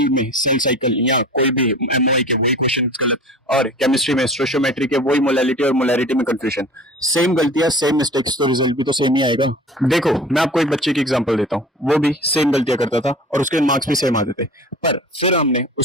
में सेल साइकिल या कोई भी एमओआई के वही क्वेश्चन गलत, और केमिस्ट्री में स्टोशियोमेट्री के वही मोलैलिटी और मोलैरिटी में कंफ्यूजन। सेम गलतियां सेम मिस्टेक्स, तो रिजल्ट भी तो सेम ही आएगा। देखो, मैं आपको एक बच्चे की एग्जांपल देता हूँ, वो भी सेम गलतियां करता था और उसके मार्क्स भी सेम आते थे। पर फिर हमने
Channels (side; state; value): both; normal; correlation 0.40